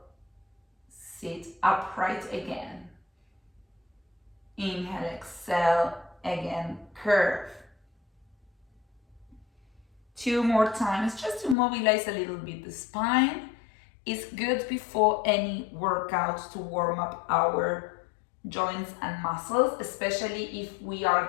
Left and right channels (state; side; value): drops out; right; at 11.6 s